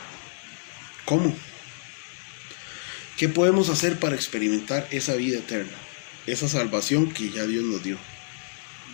¿Cómo? ¿Qué podemos hacer para experimentar esa vida eterna? Esa salvación que ya Dios nos dio.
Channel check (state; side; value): silent; right; digital silence